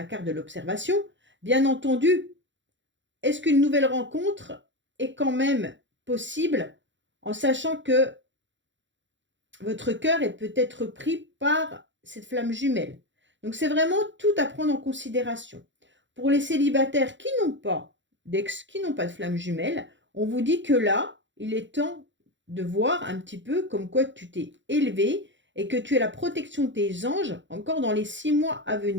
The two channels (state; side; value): late; left; 0.54 ms